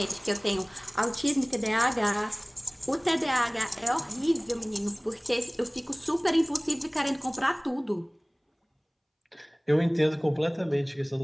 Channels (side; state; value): both; identical; correlation 1.00